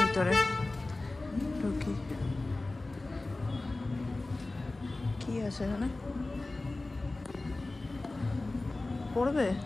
ঢুকি। কি আছে এখানে পড়বে?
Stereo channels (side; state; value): right; quieter; 3.0 dB